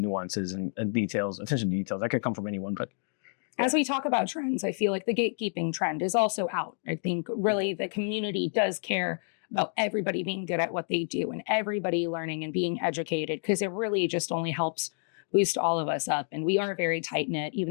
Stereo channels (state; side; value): silent; right; 58 dB below the other